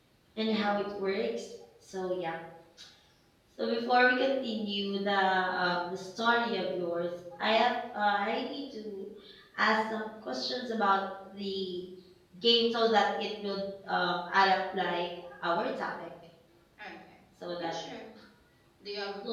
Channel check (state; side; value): identical; both; correlation 1.00